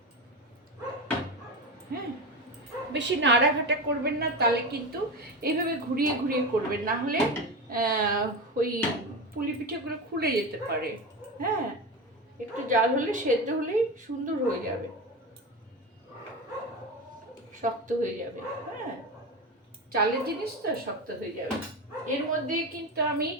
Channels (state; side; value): normal; both; correlation 0.22